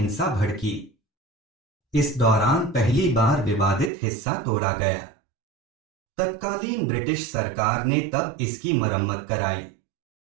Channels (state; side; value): drops out; left; at 3.9 s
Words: भड़की। इस दौरान पहली बार विवादित हिस्सा तोड़ा गया। तत्कालीन ब्रिटिश सरकार ने तब इसकी मरम्मत कराई।